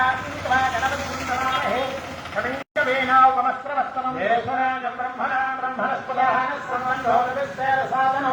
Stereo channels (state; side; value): identical; both; correlation 1.00